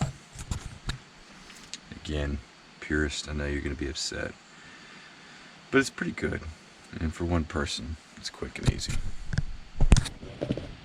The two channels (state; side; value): identical; both; correlation 1.00